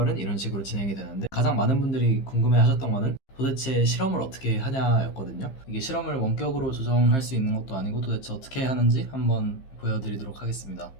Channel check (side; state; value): right; late; 15 ms